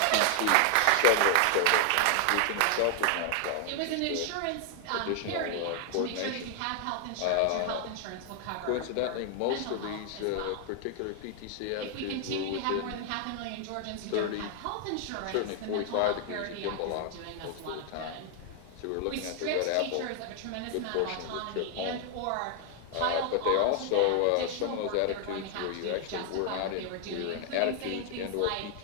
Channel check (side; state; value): both; different; correlation 0.00